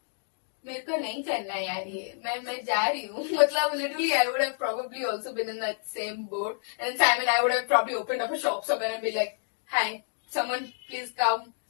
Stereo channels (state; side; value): silent; right; digital silence